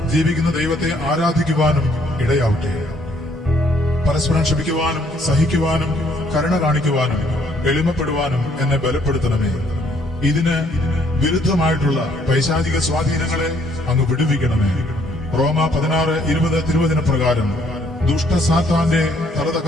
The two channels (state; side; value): normal; both; correlation 0.65